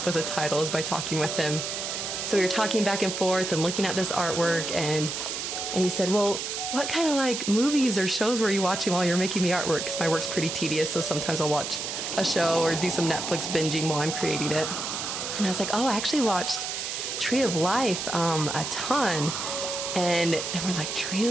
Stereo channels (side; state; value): right; noise; hiss, 4 dB below the sound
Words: with a title is by talking with him. So we were talking back and forth and looking at this artwork, and he said, well, what kind of like movies or shows were you watching while you were making the artwork? Because my work's pretty tedious, so sometimes I'll watch a show or do some Netflix binging while I'm creating it. And I was like, oh, I actually watched Tree of Life a ton. And then we're like, Tree